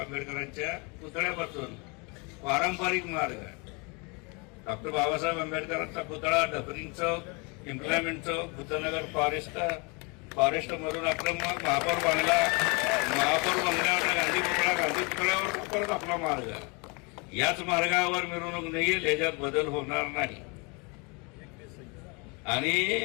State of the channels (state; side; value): quieter; right; 30.8 dB